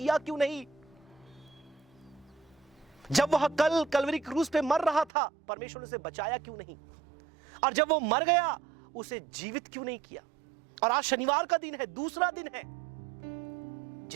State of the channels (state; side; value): drops out; left; at 5.1 s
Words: क्यों नहीं। जब वह कलवरी क्रूस पे मर रहा था, परमेश्वर ने उसे बचाया क्यों नहीं, और जब वो मर गया उसे जीवित क्यों नहीं किया। और आज शनिवार का दिन है, दूसरा दिन है।